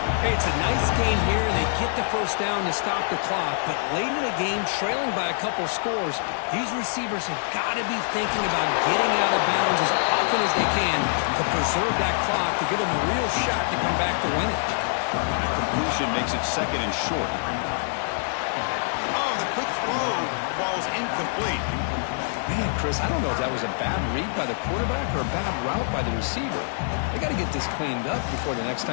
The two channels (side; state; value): right; silent; digital silence